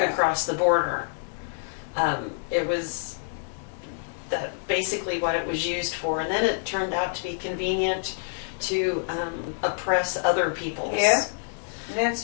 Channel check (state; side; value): silent; right; digital silence